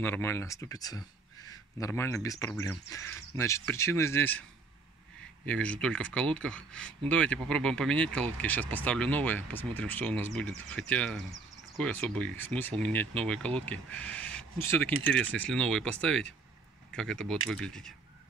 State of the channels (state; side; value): quieter; left; 4.1 dB